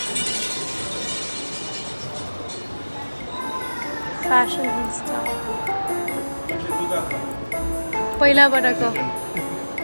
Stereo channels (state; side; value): inverted; both; correlation -1.00